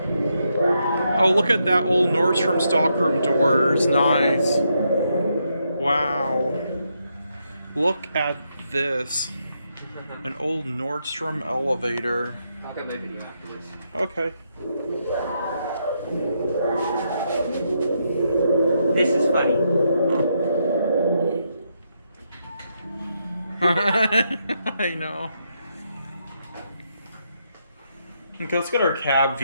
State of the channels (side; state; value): both; inverted; correlation -0.79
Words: Oh, look at that old Nordstrom stockroom doors. Nice. Wow. Look at this. An old Nordstrom elevator. I'll get my video after this. Okay. This is funny. I know. Okay, let's get our cab